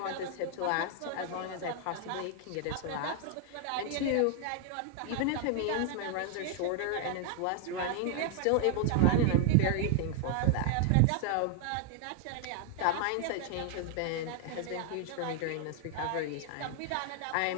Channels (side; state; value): both; different; correlation 0.00